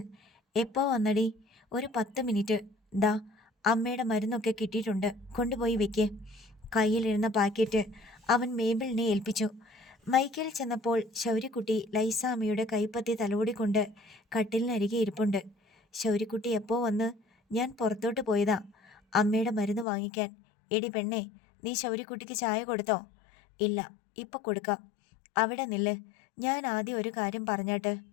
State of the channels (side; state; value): right; drops out; at 19.9 s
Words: എപ്പോ വന്നടി? ഒരു 10 മിനിറ്റ്. ദാ അമ്മയുടെ മരുന്നൊക്കെ കിട്ടിയിട്ടുണ്ട്, കൊണ്ടുപോയി വെക്കേ. കയ്യിലിരുന്ന പാക്കറ്റ് അവൻ മേബിളിനെ ഏൽപ്പിച്ചു. മൈക്കേൽ ചെന്നപ്പോൾ ശൗര്യക്കുട്ടി ലൈസാമ്മയുടെ കൈപ്പത്തി തലോടിക്കൊണ്ട് കട്ടിലിനരികെ ഇരിപ്പുണ്ട്. ശൗര്യക്കുട്ടി എപ്പോ വന്ന്? ഞാൻ പുറത്തോട്ട് പോയതാ അമ്മയുടെ മരുന്ന് വാങ്ങിക്കാൻ. എടി പെണ്ണേ, നീ ശൗര്യക്കുട്ടിക്ക് ചായ കൊടുത്തോ? ഇല്ല, ഇപ്പം കൊടുക്കാം. അവിടെ നില്ല്, ഞാൻ ആദ്യം ഒരു കാര്യം പറഞ്ഞാട്ട്.